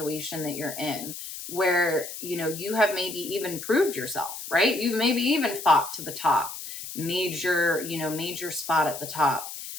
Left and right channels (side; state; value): left; noise; hiss, 9 dB below the sound